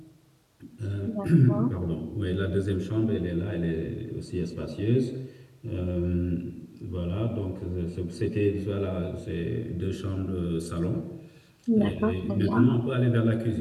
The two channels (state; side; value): identical; both; correlation 1.00